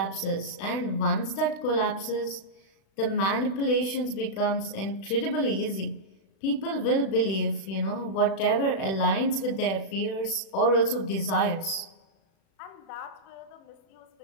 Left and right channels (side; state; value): right; late; 36 ms